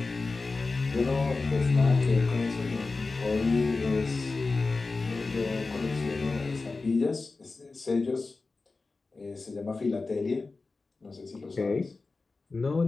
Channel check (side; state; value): right; quieter; 3.8 dB